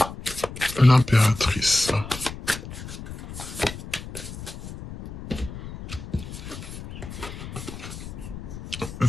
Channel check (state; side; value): noise; left; rumble, 11 dB below the sound